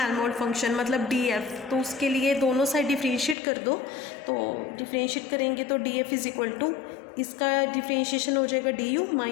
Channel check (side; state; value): right; drops out; at 3.4 s